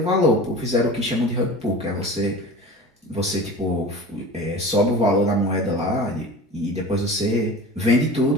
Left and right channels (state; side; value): normal; both; correlation 0.36